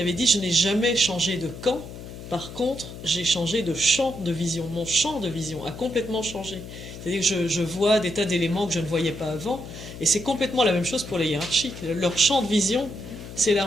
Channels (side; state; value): left; noise; hum, 12 dB below the sound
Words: dit « Je n'ai jamais changé de camp, par contre j'ai changé de champ de vision. Mon champ de vision a complètement changé. C'est-à-dire que je vois des tas d'éléments que je ne voyais pas avant, et c'est complètement la même chose pour les hiérarchiques. Leur champ de vision